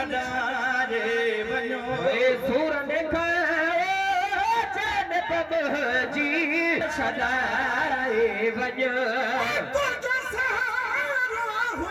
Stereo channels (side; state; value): both; identical; correlation 1.00